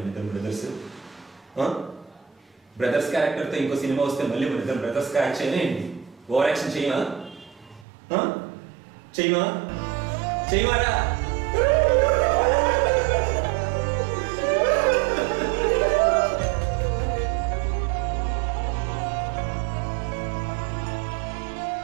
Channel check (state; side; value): drops out; left; at 7.9 s